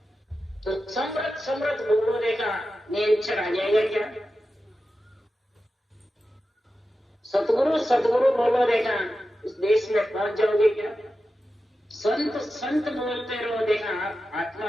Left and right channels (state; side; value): normal; both; correlation 0.92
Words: तो समृद्ध बोलो देखा नेचर आ जाएगा क्या? सतगुरु बोलो देखा उस देश में पहुंच जाओगे क्या? संत बोलते रहो देखा